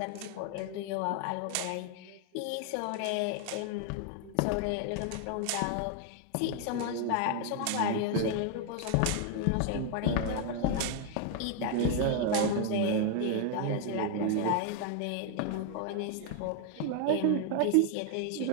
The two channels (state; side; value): different; both; correlation 0.00